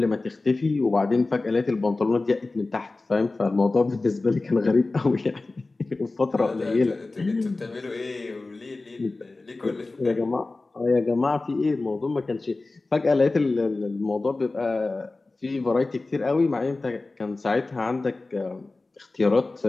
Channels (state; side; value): quieter; right; 3.3 dB